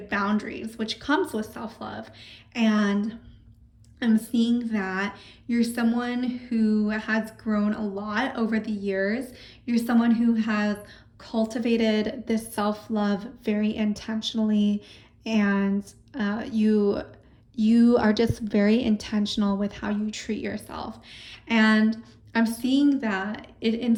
boundaries, which comes with self-love. And I'm seeing that you're someone who has grown a lot over the years. You're someone who has cultivated this self-love very intentionally, and you are just very intentional with how you treat yourself. And I'm seeing that it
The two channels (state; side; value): identical; both; correlation 1.00